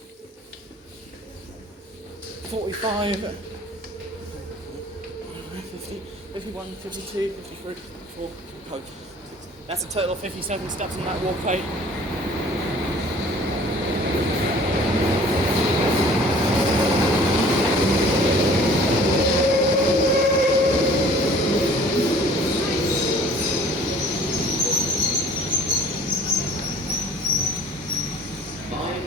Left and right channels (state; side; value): normal; both; correlation 0.50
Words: 50, 51, 52, 53, 54, 55. That's a total of 57 steps on that walkway.